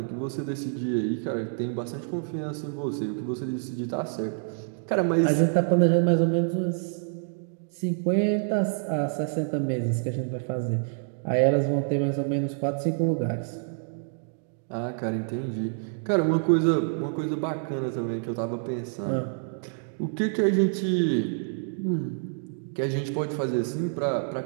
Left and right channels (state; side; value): silent; left; digital silence